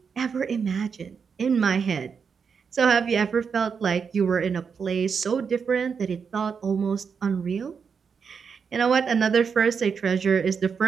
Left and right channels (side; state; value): left; quieter; 6.1 dB